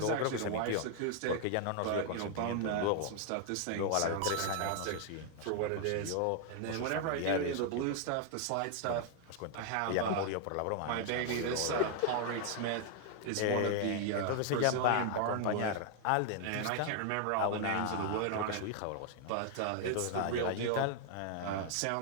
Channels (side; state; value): both; different; correlation 0.00